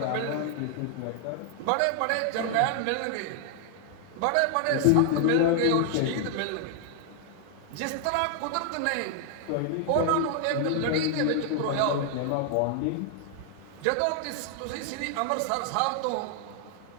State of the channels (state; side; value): different; both; correlation 0.00